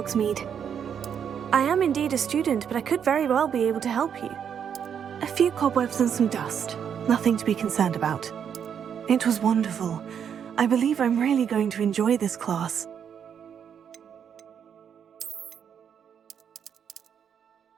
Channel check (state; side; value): quieter; left; 8.0 dB